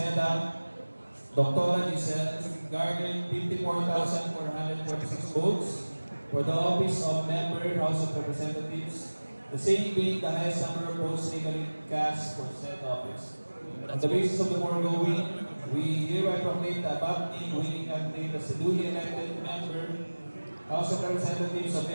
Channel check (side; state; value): both; inverted; correlation -1.00